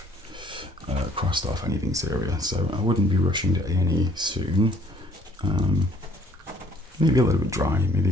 crossed off anything serious, so I wouldn't be rushing to A&E soon. Maybe a little bit dry, maybe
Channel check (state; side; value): normal; both; correlation 0.60